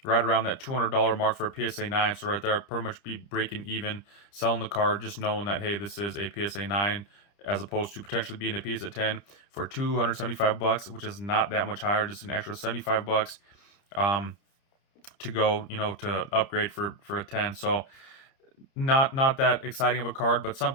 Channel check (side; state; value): right; late; 30 ms